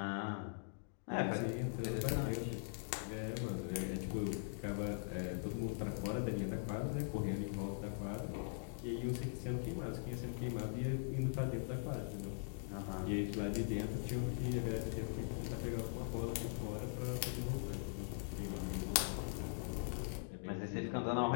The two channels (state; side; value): silent; right; digital silence